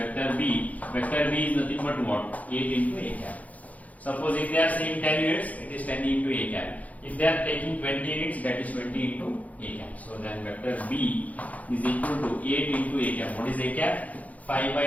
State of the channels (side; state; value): right; late; 0.073 ms